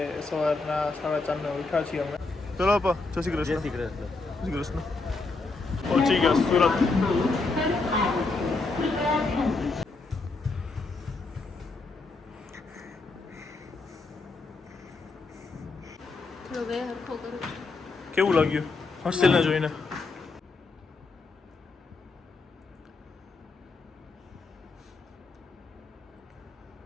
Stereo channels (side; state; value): right; quieter; 3.7 dB